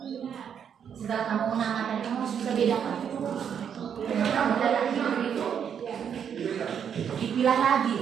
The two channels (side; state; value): left; quieter; 8.0 dB